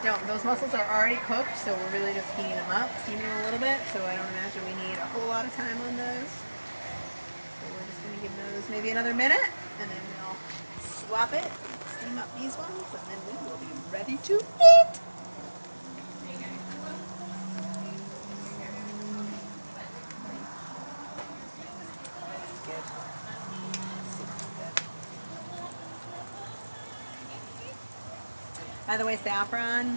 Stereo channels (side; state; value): both; inverted; correlation -1.00